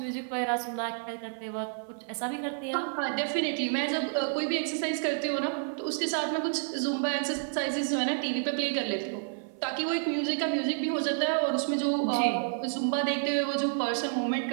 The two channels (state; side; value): silent; left; 58 dB below the other